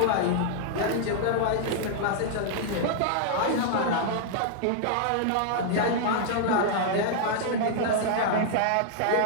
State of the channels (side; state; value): both; different; correlation -0.01